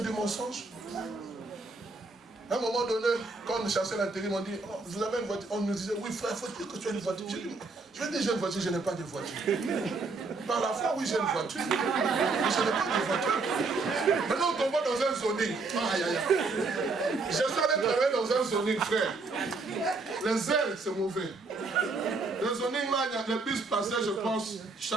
du mensonge. À un moment donné, quand on chassait l'intérim, on dit, oh, vous avez une voiture. On nous disait, oui frère, il faut dire que tu as une voiture. Je vais dire, j'ai une voiture, je n'ai pas de voiture. Par la foi, oui, j'ai une voiture. Mais je n'ai pas de voiture. Maintenant, on tombe dans un zoning. Aïe, aïe, aïe. J'essaie de travailler dans un zoning, frère. Les ailes, c'est mauvais. Le zoning, là, il y a des bus passés, je pense,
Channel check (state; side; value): quieter; left; 3.8 dB